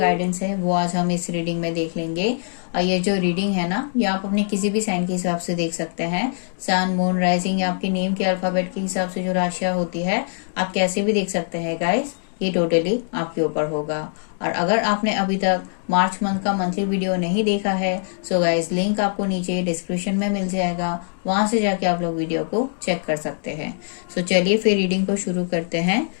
है, वो आज हम इस रीडिंग में देख लेंगे। और ये जो रीडिंग है ना, ये आप अपने किसी भी साइन के हिसाब से देख सकते हैं। सन, मून, राइजिंग या आपके नेम के अल्फाबेट के हिसाब से जो राशियां होती है, आप कैसे भी देख सकते हैं गाइस। ये टोटली आपके ऊपर होगा। और अगर आपने अभी तक मार्च मंथ का मंथली वीडियो नहीं देखा है, सो गाइस लिंक आपको नीचे डिस्क्रिप्शन में मिल जाएगा, वहां से जाके आप लोग वीडियो को चेक कर सकते हैं। सो चलिए फिर रीडिंग को शुरू करते हैं।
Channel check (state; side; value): silent; right; digital silence